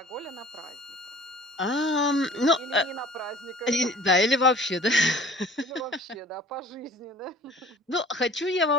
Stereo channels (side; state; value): both; normal; correlation 0.47